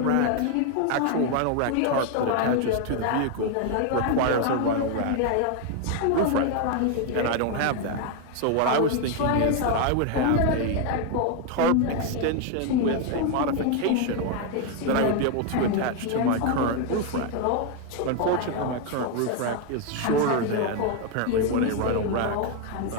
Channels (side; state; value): both; different; correlation 0.01